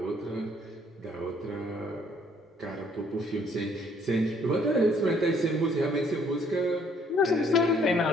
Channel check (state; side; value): normal; both; correlation 0.63